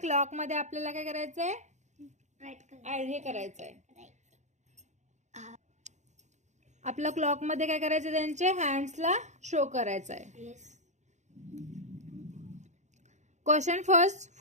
मध्ये आपल्याला काय करायचं आहे, हे करायचं आहे. आपल्या क्लॉक मध्ये काय करायचं, त्यांचे हँड्सला शो करायचं आहे. Question first.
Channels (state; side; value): late; left; 0.34 ms